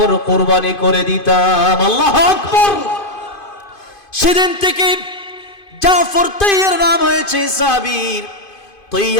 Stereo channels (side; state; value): right; late; 2.5 ms